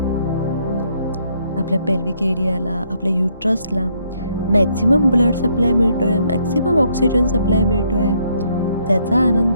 आपल्या पेल्विक एरियाला, आपल्या युट्रसला मॅक्सिमम ब्लड सप्लाय मिळतोय, मॅक्सिमम ऑक्सिजन सप्लाय मिळतोय, त्याचा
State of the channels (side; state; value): both; inverted; correlation -0.71